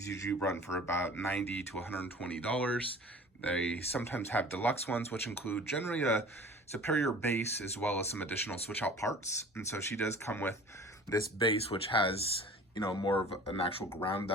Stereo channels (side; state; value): both; normal; correlation 0.43